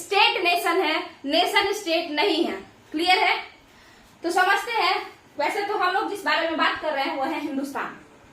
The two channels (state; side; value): identical; both; correlation 1.00